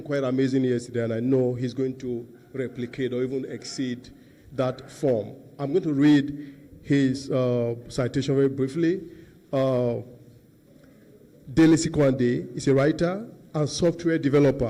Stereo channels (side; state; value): both; identical; correlation 1.00